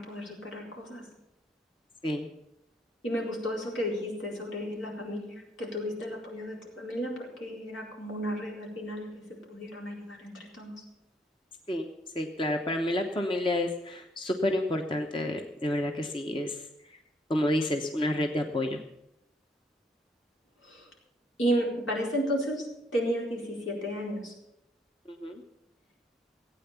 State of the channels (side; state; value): both; normal; correlation 0.68